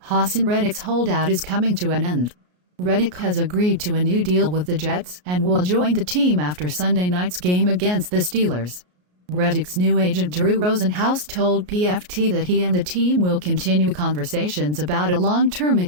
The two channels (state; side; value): late; left; 33 ms